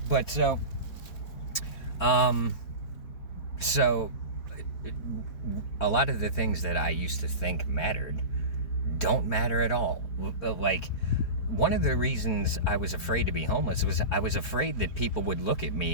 but so a lot of the things that I used to think mattered don't matter at all. Like, one of the reasons I was afraid to be homeless was I was afraid that people would look at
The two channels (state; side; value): late; right; 4.4 ms